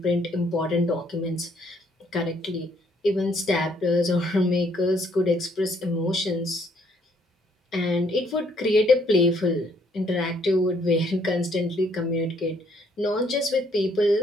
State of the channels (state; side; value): normal; both; correlation 0.67